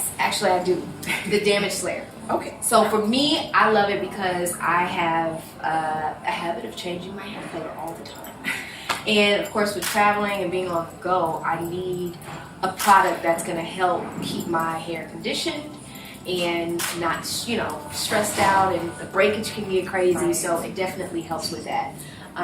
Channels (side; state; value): both; identical; correlation 1.00